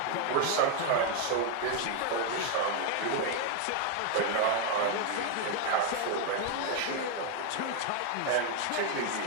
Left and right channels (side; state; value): both; different; correlation 0.01